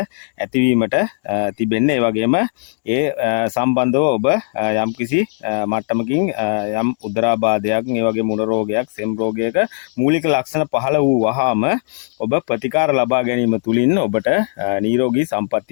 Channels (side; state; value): right; silent; digital silence